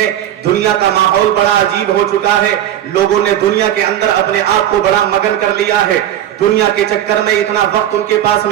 دنیا کا ماحول بڑا عجیب ہو چکا ہے، لوگوں نے دنیا کے اندر اپنے آپ کو بڑا مگن کر لیا ہے. دنیا کے چکر میں اتنا وقت ان کے پاس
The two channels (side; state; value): left; quieter; 11.5 dB